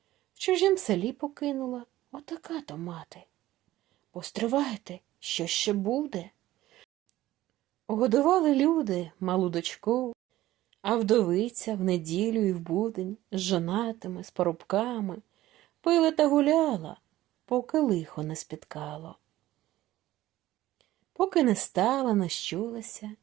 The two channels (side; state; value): left; quieter; 15.4 dB